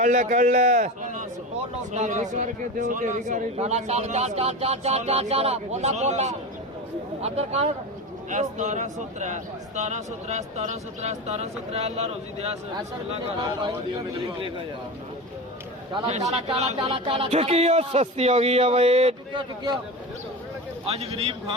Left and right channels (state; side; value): normal; both; correlation 0.25